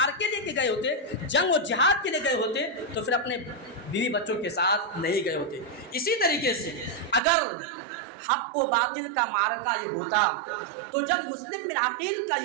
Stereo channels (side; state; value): left; drops out; at 7.2 s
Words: لے کے گئے ہوتے، جنگ و جہاد کے لیے گئے ہوتے تو پھر اپنے بیوی بچوں کے ساتھ نہیں گئے ہوتے۔ اسی طریقے سے اگر حق و باطل کا معرکہ یہ ہوتا تو جب مسلم بن عقیل کا